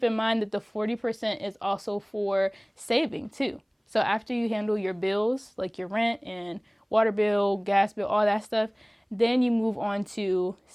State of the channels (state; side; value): identical; both; correlation 1.00